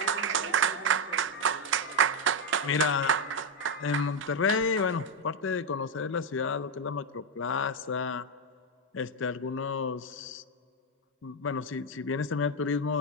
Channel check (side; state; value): both; normal; correlation 0.04